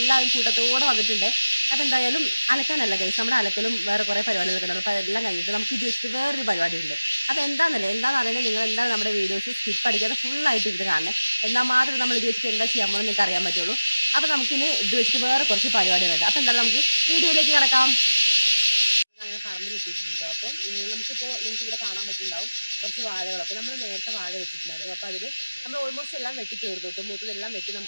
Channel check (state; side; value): inverted; both; correlation -0.96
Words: കൂട്ടത്തോടെ വന്നിട്ടുണ്ട്. അപ്പോൾ എന്തായാലും അലക്കാനല്ല ഗൈസ്, നമ്മുടെ അലക്കലും വേറെ കുറേ പരിപാടികളൊക്കെ ഉണ്ട്. അപ്പോൾ അതെല്ലാം കഴിഞ്ഞിട്ട് നമുക്ക് ജസ്റ്റ് വേറൊരു പരിപാടി ഉണ്ട്. അപ്പോൾ എന്താണെന്ന് അറിയുന്നത് നിങ്ങൾ എന്താണ് നമ്മുടെ വീഡിയോസ് സ്കിപ്പ് അടിക്കാതെ ഫുള്ളായിട്ട് ഇത് കാണണേ. എന്നാൽ മാത്രമേ നമ്മൾ ഇത് വെച്ചിട്ട് എന്താ ചെയ്യാൻ പോകുന്നത് നിങ്ങൾക്ക് അറിയാൻ പറ്റുള്ളൂ. അപ്പോൾ നമുക്കിന് ഇത് വെച്ചിട്ട് വേറെ കുറച്ച് പരിപാടികളുണ്ട്. അപ്പോൾ എന്തായാലും നമുക്ക് വീഡിയോയിലേക്ക് കിടക്കാം. അങ്ങനെ പറമ്പിലെത്തിയിട്ടുണ്ട്. അപ്പം നമുക്കിപ്പോൾ നിങ്ങൾക്ക് ഇവിടെ കാണാൻ പറ്റുന്നുണ്ടാവും കുറച്ച് വാഴകളൊക്കെ നമ്മൾ നേരത്തെ വാഴ വെച്ചിട്ടുണ്ടായിരുന്നു. അപ്പോൾ അതിൽ നമ്മൾ ഓൾമോസ്റ്റ് എല്ലാം വെട്ടി തീർന്നു. ഇപ്പം മൂത്തതെല്ലാം വെട്ടി